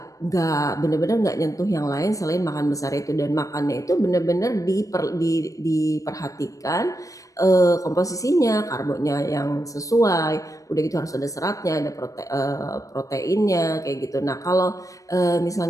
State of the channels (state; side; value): late; right; 0.16 ms